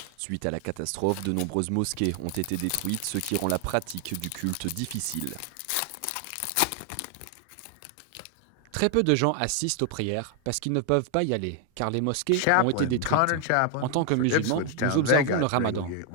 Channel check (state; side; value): different; both; correlation 0.00